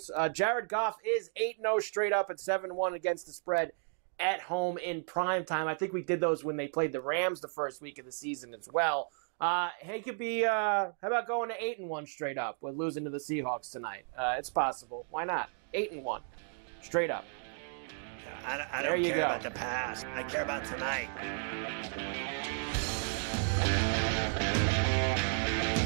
Jared Goff is 8-0 straight up at 7-1 against the spread at home in prime time. I think we did those when they played the Rams the first week of the season as well. He could be, how about going to 8-1 straight up with losing to the Seahawks tonight? It's possible. Why not? 8-1 straight up. I don't care about the past. I care about tonight.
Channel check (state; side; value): silent; left; 55 dB below the other